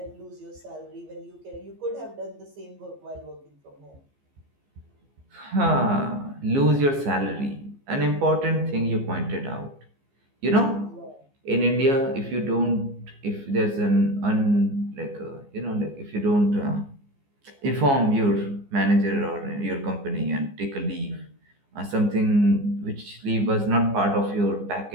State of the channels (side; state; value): left; late; 15 ms